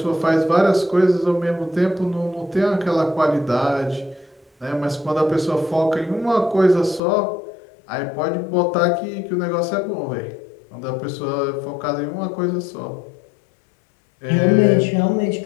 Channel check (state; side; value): drops out; right; at 7.0 s